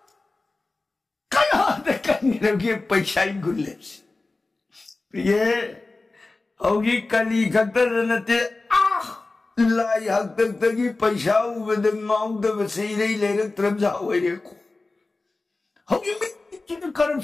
kaya da kanina ki paisay gulips priye hogi kali kaktar nati Lai hak tagi paisa ubeda ngau da basirei lerak tramja oireko hogi mi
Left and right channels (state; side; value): quieter; right; 3.3 dB